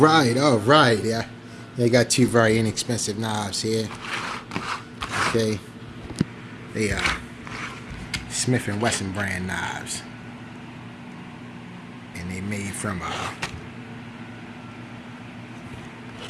right. Yeah, they got two very inexpensive knives here. Okay, they are Smith and Wesson brand knives, and they made from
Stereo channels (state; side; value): identical; both; correlation 1.00